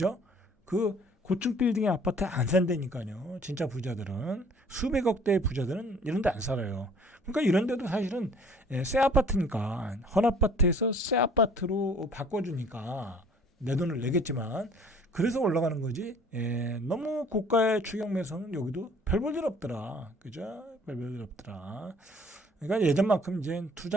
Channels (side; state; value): both; normal; correlation 0.54